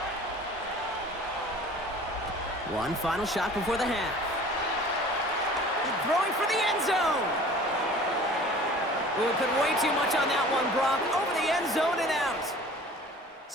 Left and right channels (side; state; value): both; normal; correlation 0.45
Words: One final shot before the half. Throwing for the end zone. We put way too much on that one, Brock. Over the end zone and out.